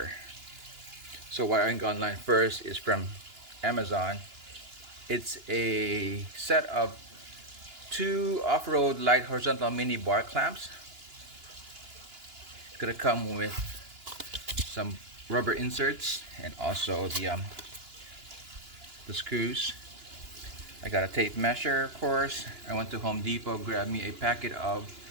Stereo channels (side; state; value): left; late; 2.9 ms